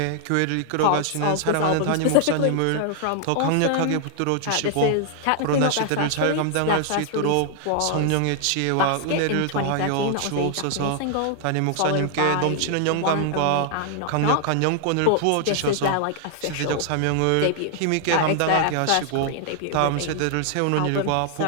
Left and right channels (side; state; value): both; different; correlation 0.00